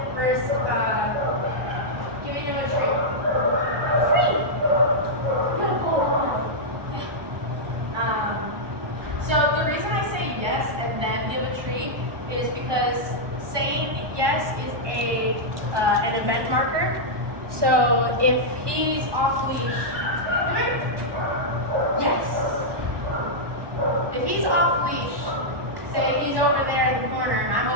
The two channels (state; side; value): late; left; 1.2 ms